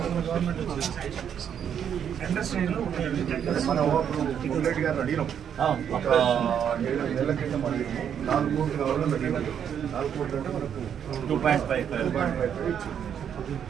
మనం బుల్లెట్ గారిని అడిగినాం. ఒక 7 నెలల క్రితం అడిగినాం. 4 కోట్లు కావాలని అడిగినాం. 4 కోట్లు అంటే మనకు 2.5 ఇచ్చి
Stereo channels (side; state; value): left; quieter; 8.5 dB